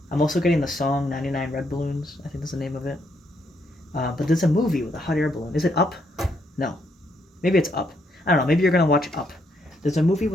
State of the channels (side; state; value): both; normal; correlation 0.75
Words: I'm also getting the song 99 Red Balloons. I think that's the name of it. But there's a movie with a hot air balloon. Is it Up? No. Maybe it's Up. I don't know. Maybe you're going to watch Up. There's a movie